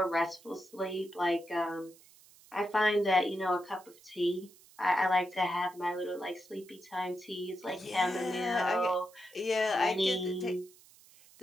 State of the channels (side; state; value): right; noise; hiss, 25 dB below the sound